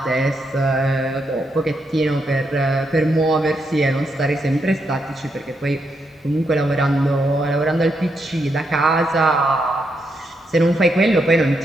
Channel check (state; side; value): normal; both; correlation 0.81